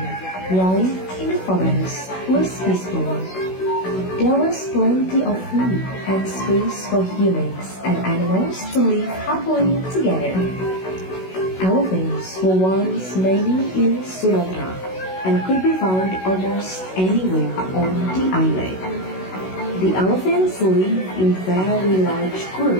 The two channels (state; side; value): late; right; 16 ms